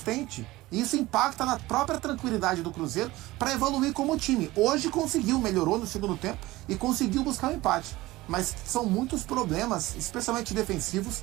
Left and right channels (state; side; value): quieter; left; 18.8 dB